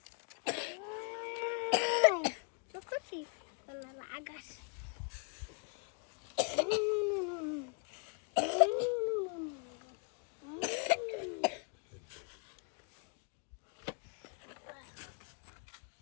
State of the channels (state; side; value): quieter; right; 37.8 dB